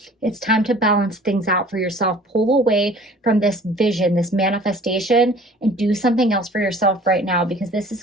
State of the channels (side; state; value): both; normal; correlation 0.49